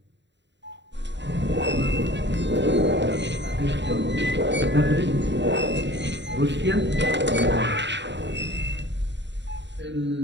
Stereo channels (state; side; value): late; left; 0.52 ms